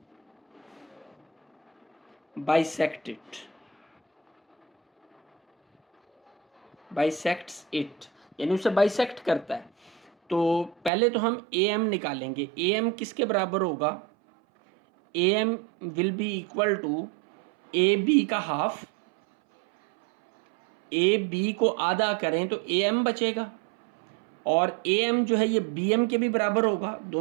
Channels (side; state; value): left; drops out; at 10.9 s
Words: bisect it, bisects it, यानी उसे बाइसेक्ट करता है। तो पहले तो हम ए एम निकालेंगे, ए एम किसके बराबर होगा, A M will be equal to A B का हाफ, ए बी को आधा करें तो ए एम बचेगा, और ए एम जो है ये बी एम के भी बराबर होगा,